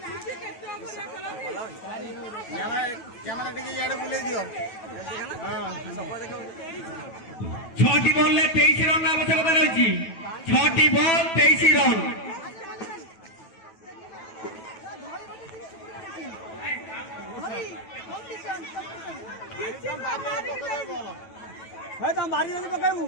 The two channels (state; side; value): late; right; 9.2 ms